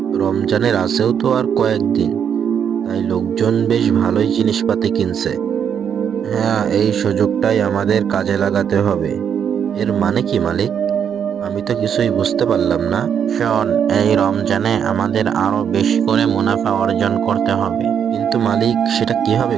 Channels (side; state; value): left; quieter; 8.0 dB